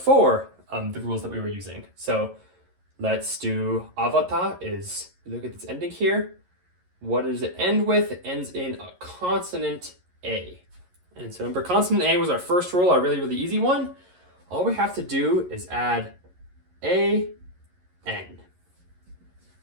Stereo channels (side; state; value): left; late; 11 ms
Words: the rules that we were using. So let's do avata is, look at this ending here. What does it end with? It ends in a consonant A. And so remember, consonant A was our first rule, our really, really easy one. All we have to do is add A, N.